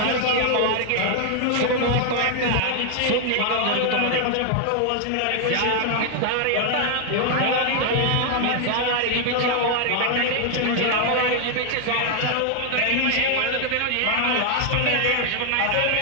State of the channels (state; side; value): different; both; correlation 0.00